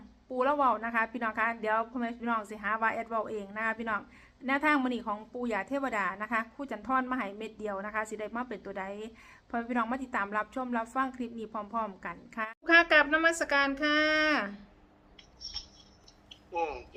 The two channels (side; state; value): both; identical; correlation 1.00